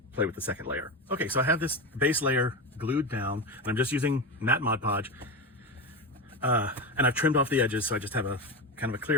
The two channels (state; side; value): normal; both; correlation 0.18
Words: play with the second layer. Okay, so I have this base layer glued down and I'm just using matte Mod Podge. And I've trimmed off the edges, so I just have a kind of a